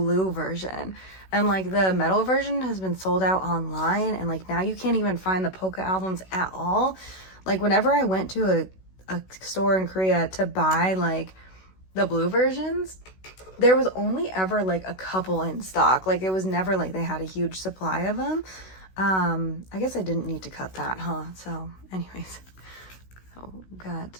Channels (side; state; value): right; late; 16 ms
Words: version, and like the metal version has been sold out online, and like now you can't even find the Poca albums at all. Like whenever I went to a store in Korea to buy like the blue versions, there was only ever like a couple in stock. Like it was never like they had a huge supply of them. I guess I didn't need to cut that, huh? So anyways, so we've got